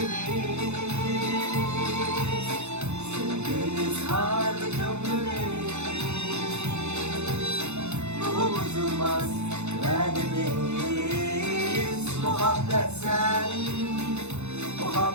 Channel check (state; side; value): late; left; 0.82 ms